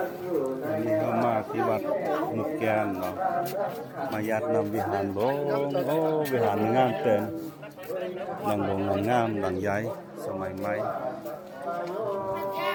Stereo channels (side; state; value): both; identical; correlation 1.00